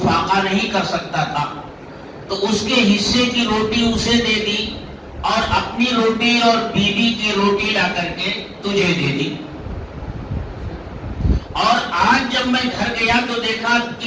فاقہ نہیں کر سکتا تھا، تو اس کے حصے کی روٹی اسے دے دی اور اپنی روٹی اور بیوی کی روٹی لا کر کے تجھے دے دی۔ اور آج جب میں گھر گیا تو دیکھا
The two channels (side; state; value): both; identical; correlation 1.00